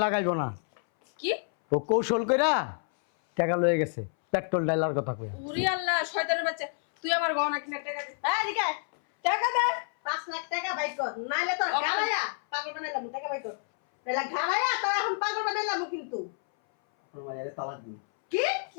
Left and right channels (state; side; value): silent; right; 59 dB below the other